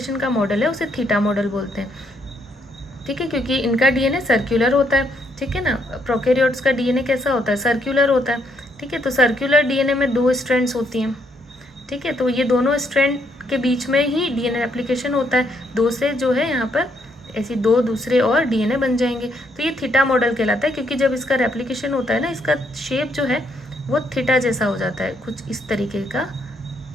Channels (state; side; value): normal; both; correlation 0.73